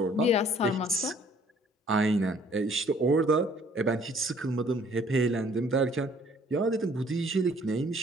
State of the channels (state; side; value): normal; both; correlation 0.59